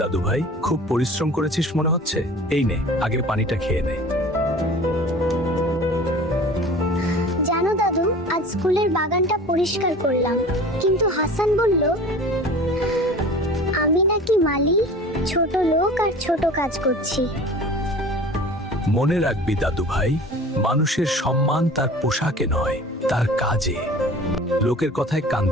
দাদু ভাই, খুব পরিশ্রম করেছিস মনে হচ্ছে। এই নে, আগে পানিটা খেয়ে নে। জানো দাদু, আজ স্কুলের বাগানটা পরিষ্কার করলাম, কিন্তু হাসান বলল আমি নাকি মালি, ছোট লোক আর ছোট কাজ করছি। মনে রাখবি দাদু ভাই, মানুষের সম্মান তার পোশাকে নয়, তার কাজে। লোকের কথায় কান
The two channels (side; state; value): both; normal; correlation 0.41